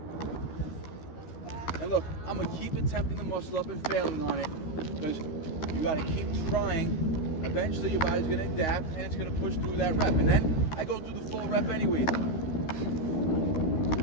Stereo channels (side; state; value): right; late; 13 ms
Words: And look, I'm going to keep attempting the muscle up and failing on it because you got to keep trying. Eventually your body's going to adapt and it's going to push through that rep. And then I go through the full rep anyway.